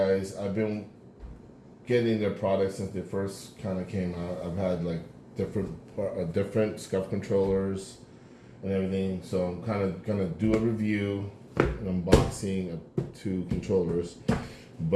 I've been getting their products since they first kind of came out. I've had like different Scuf controllers and everything, so I'm kind of gonna do a review, an unboxing of two controllers.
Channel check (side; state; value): both; identical; correlation 1.00